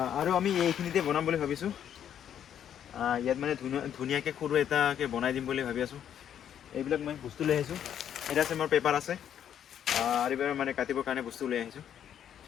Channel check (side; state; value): right; quieter; 9.5 dB